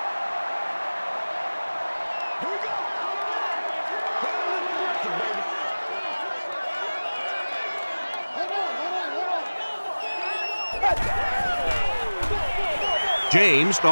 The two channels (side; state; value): both; inverted; correlation -1.00